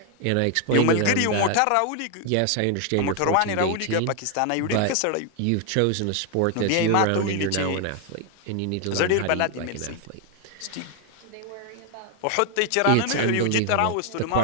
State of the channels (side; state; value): both; different; correlation 0.01